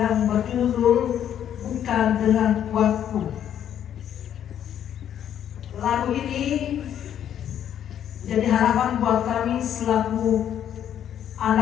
berjudul Bukan Dengan Kuatku. Lagu ini jadi harapan buat kami selaku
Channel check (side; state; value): right; quieter; 9.9 dB